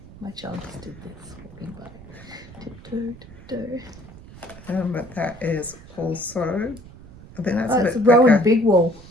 My child just did this walking by. But that is also, I think that's It's a bit Rowan thicker. Big Wool.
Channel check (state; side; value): noise; right; rumble, 19 dB below the sound